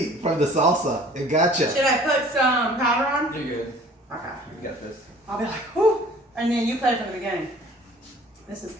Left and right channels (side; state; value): both; normal; correlation 0.50